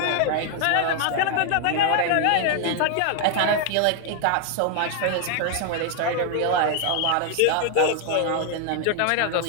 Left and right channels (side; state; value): both; different; correlation 0.00